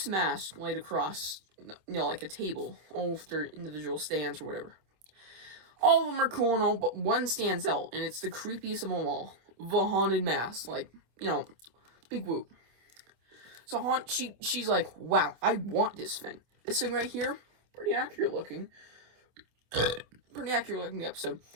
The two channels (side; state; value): left; late; 26 ms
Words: masks laid across, like a table, all with their individual stands or whatever. All of them are cool and all, but one stands out, and it's the creepiest of them all. The haunted mask. Like, big whoop. So she's like, wow, I want this thing. This thing right here, pretty accurate looking. Pretty accurate looking episode.